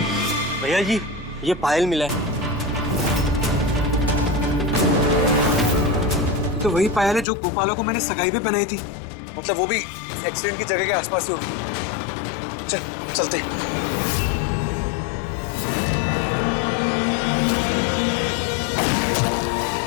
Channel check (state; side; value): drops out; right; at 7.2 s